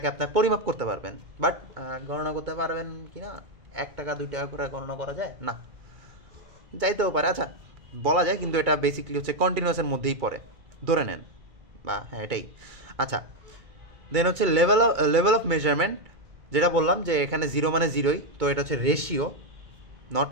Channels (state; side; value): late; left; 2.3 ms